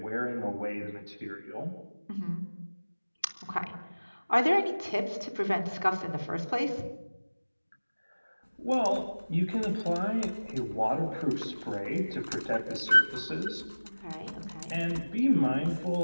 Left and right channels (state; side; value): inverted; both; correlation -1.00